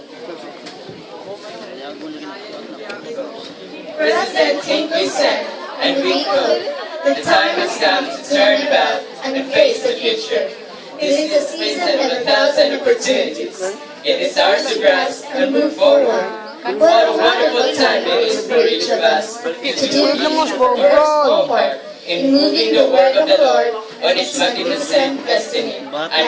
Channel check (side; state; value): both; identical; correlation 1.00